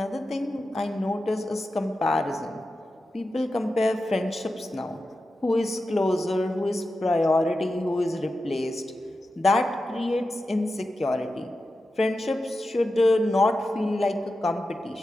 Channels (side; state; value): both; normal; correlation 0.91